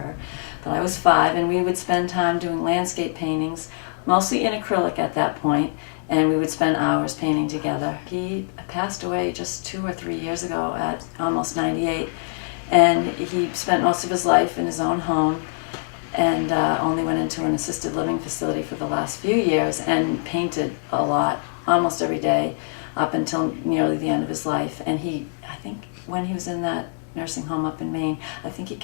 But I was 5, and we would spend time doing landscape paintings, mostly in acrylic at that point, and we would spend hours painting together. He passed away just 2 or 3 years ago at almost 98. And he spent most of his life in his own home and only went into an assisted living facility for the last few years and painted a lot, almost every day, up until nearly the end of his life. And I think when he was in that nursing home up in Maine, I think he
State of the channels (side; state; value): right; silent; digital silence